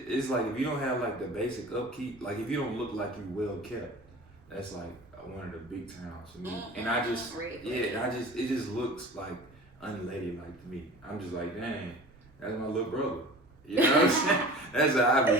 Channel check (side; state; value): right; noise; rumble, 27 dB below the sound